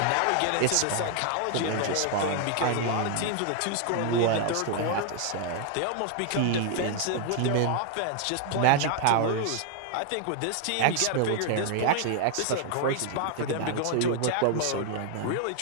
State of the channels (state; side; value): different; both; correlation 0.00